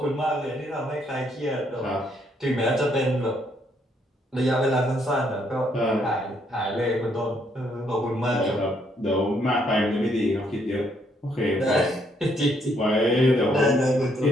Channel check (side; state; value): both; normal; correlation 0.71